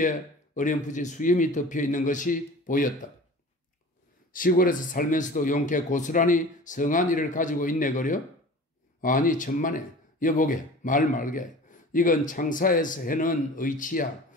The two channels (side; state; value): both; normal; correlation 0.40